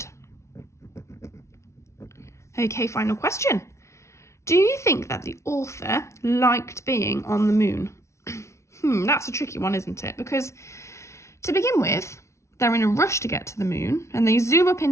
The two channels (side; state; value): right; late; 0.13 ms